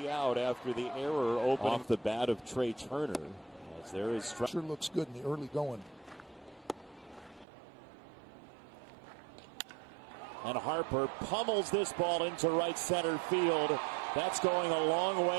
out after the error opening off the bat of Trey Turner. As there is sure looks good in the early going. And Harper pummels this ball into right center field. That's going a long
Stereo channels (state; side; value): drops out; left; at 7.5 s